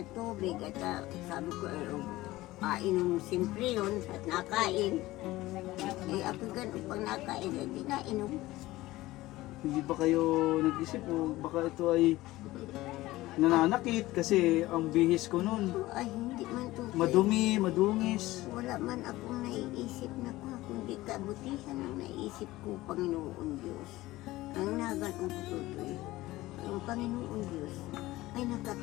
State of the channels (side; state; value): right; quieter; 17.9 dB